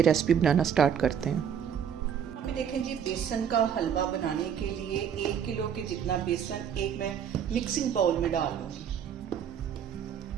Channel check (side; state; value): left; quieter; 8.2 dB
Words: रेसिपी बनाना स्टार्ट करते हैं। यहाँ पे देखें जी, बेसन का हलवा बनाने के लिए 1 किलो के जितना बेसन एक मैं मिक्सिंग बाउल में डाल लूंगी।